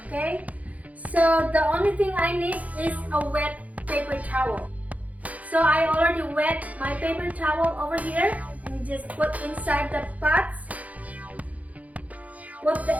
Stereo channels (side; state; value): left; late; 0.072 ms